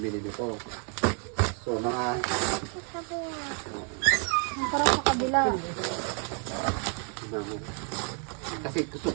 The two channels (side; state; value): left; quieter; 40.0 dB